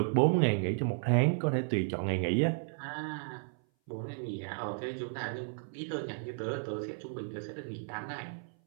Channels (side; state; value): left; silent; 55 dB below the other